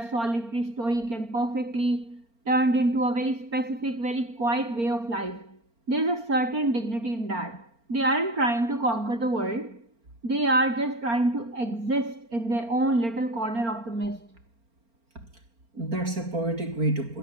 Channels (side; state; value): left; late; 4.4 ms